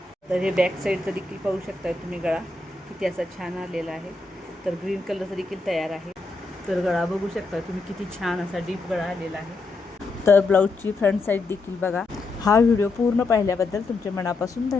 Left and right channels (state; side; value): quieter; right; 3.4 dB